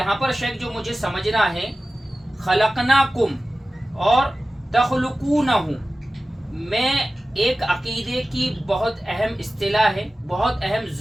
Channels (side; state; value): both; normal; correlation 0.96